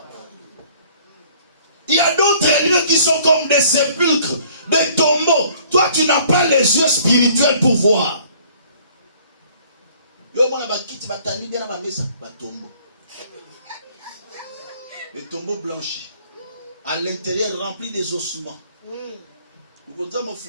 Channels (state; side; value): inverted; both; correlation -0.56